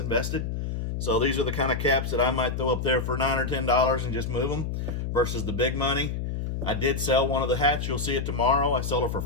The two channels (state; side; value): noise; left; hum, 3 dB below the sound